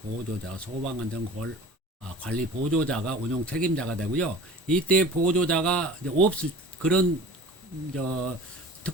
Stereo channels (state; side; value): normal; both; correlation 0.42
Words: 보조자, 소방안전관리 보조자가 운영 책임자가 되고요. 이때 보조자가 이제 없을 그런